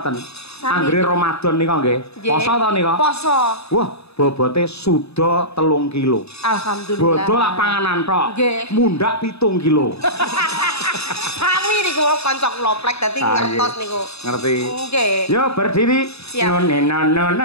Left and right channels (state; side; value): late; right; 0.79 ms